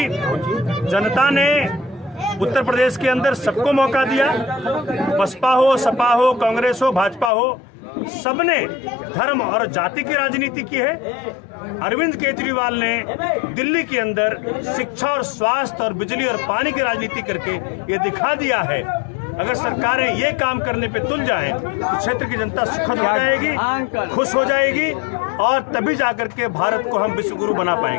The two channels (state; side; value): drops out; right; at 7.3 s